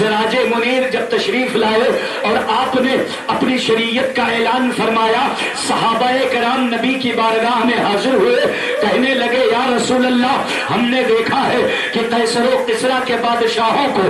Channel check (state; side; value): identical; both; correlation 1.00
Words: منیر جب تشریف لائے اور آپ نے اپنی شریعت کا اعلان فرمایا، صحابہ کرام نبی کی بارگاہ میں حاضر ہوئے، کہنے لگے یا رسول اللہ، ہم نے دیکھا ہے کہ قیصر و کسریٰ کے بادشاہوں کو